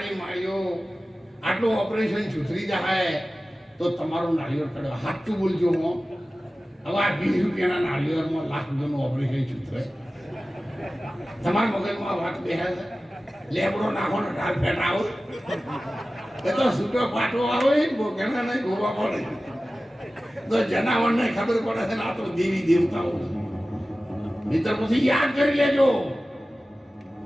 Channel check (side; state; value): both; normal; correlation 0.96